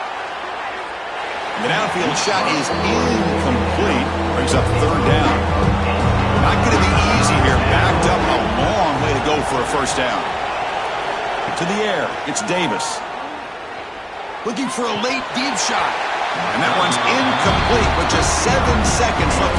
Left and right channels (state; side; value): identical; both; correlation 1.00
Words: The downfield shot is incomplete. Brings up third down. Not going to be easy here. Backed up a long way to go for a first down. To the air, it's Davis. Looking for a late deep shot. And that one's incomplete with just 7 seconds left